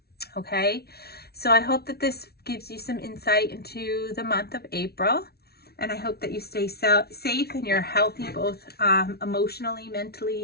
okay? So I hope that this gives you some insight into the month of April. And I hope that you stay safe and you're healthy, both emotionally,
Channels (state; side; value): late; right; 0.45 ms